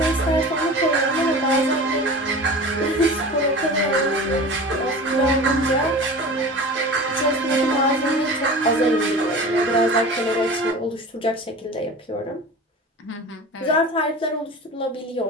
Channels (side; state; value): both; normal; correlation 0.35